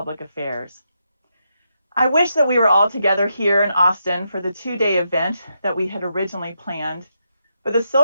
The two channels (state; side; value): inverted; both; correlation -0.82